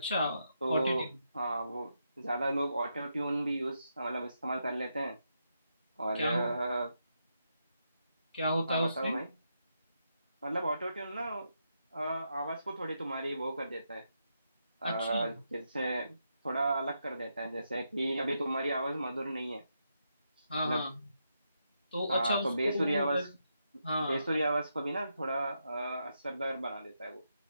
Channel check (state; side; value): inverted; both; correlation -0.83